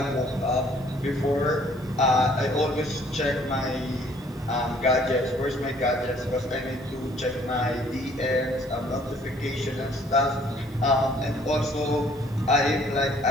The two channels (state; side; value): normal; both; correlation 0.59